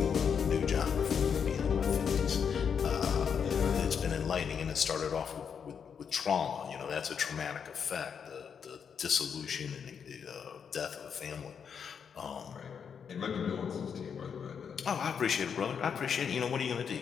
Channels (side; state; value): right; quieter; 7.0 dB